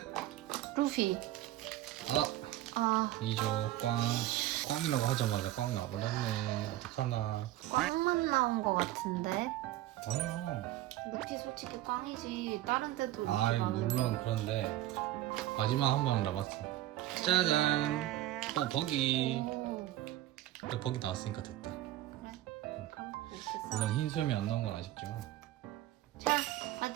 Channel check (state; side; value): quieter; left; 14.8 dB